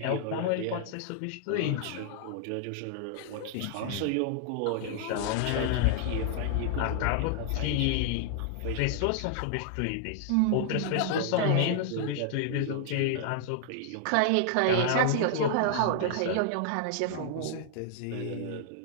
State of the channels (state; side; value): different; both; correlation -0.01